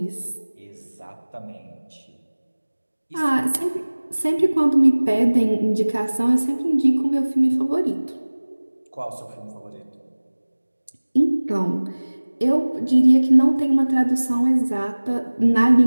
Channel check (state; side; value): inverted; both; correlation -1.00